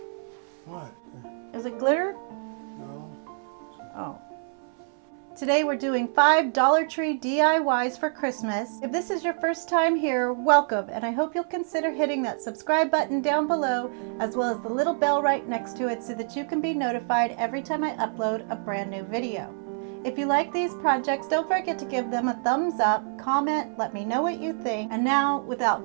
What? Is it glitter? No. Oh. Today we're doing 5 Dollar Tree DIYs for Christmas. If this is your first time here, welcome, and I hope you'll consider hitting that subscribe button down below as well as the little bell right next to it so that you can be notified every time I upload a brand new video. If you like these projects, don't forget to give them a thumbs up, comment, let me know what you think. And now,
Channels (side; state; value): left; silent; 60 dB below the other